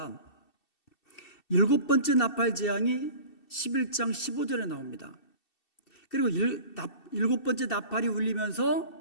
일곱 번째 나팔 재앙이 11장 15절에 나옵니다. 그리고 일곱 번째 나팔이 울리면서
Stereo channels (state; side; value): late; right; 2.7 ms